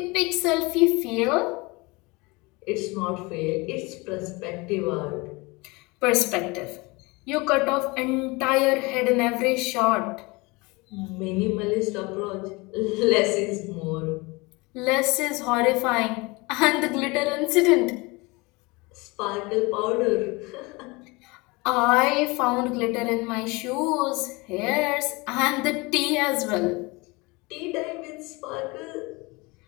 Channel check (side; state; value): right; quieter; 25.2 dB